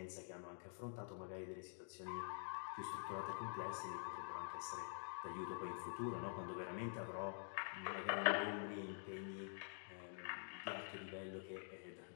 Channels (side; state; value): right; silent; digital silence